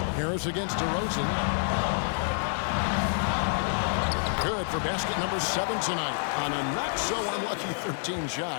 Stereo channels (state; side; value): silent; right; digital silence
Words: Harris against DeRozan. Good for basket number 7 tonight on a not-so-unlucky 13